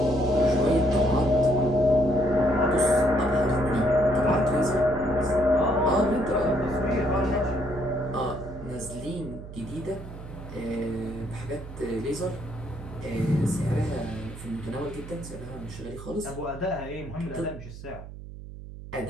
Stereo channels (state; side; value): noise; right; hum, 13 dB below the sound